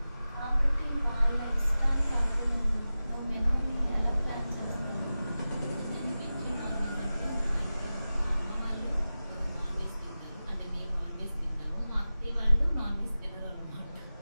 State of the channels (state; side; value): inverted; both; correlation -0.95